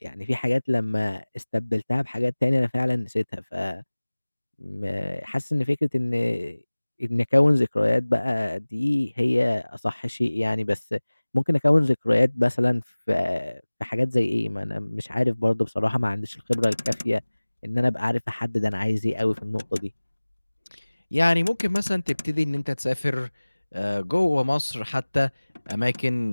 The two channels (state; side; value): inverted; both; correlation -1.00